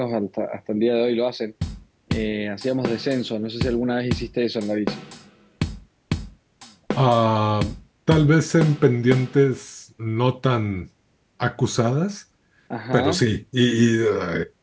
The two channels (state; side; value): identical; both; correlation 1.00